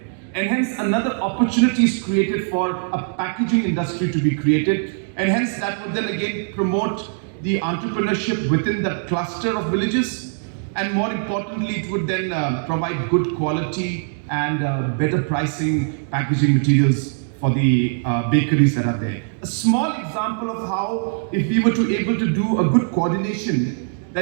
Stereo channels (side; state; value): left; silent; 65 dB below the other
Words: And hence another opportunity is created for a packaging industry to be created, and hence that would then again promote the entrepreneurship within that cluster of villages, and more importantly, it would then provide good quality and better pricing packaging materials for the bakeries that are there. A small example of how, if we were to able to do a good coordination,